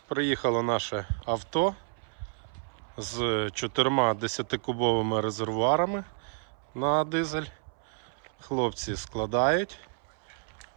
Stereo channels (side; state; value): left; silent; 58 dB below the other